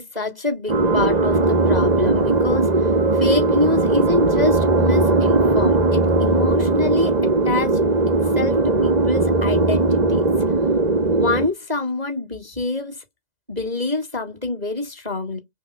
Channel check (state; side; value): late; left; 2.0 ms